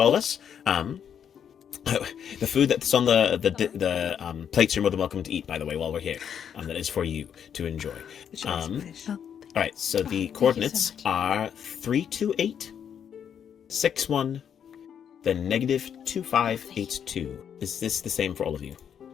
of us. The food that's on the plates you're more than welcome to eat, by the way, while we're here. That is for you to enjoy. All right, so the coordinates are 328, 61, then negative 2582. Is this the same for all of you?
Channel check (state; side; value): quieter; right; 8.3 dB